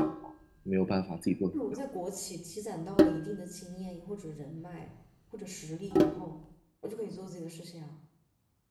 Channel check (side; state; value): both; identical; correlation 1.00